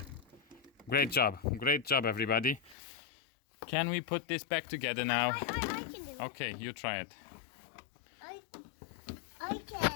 Great job. Great job, everybody. Can we put this back together now? I can do it. Okay, you try it. I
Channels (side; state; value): right; drops out; at 2.8 s